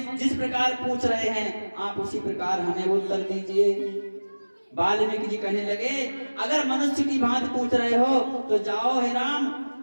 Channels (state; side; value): inverted; both; correlation -1.00